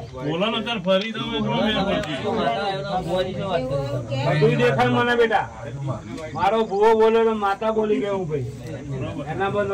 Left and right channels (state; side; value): identical; both; correlation 1.00